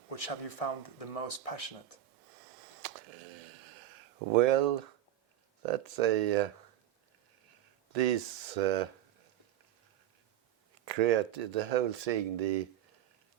Which have you found the most passionate? Well, that's the whole thing, the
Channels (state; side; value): quieter; left; 12.2 dB